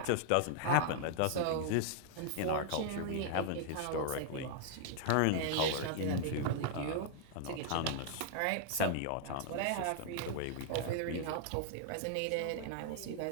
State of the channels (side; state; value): both; different; correlation -0.01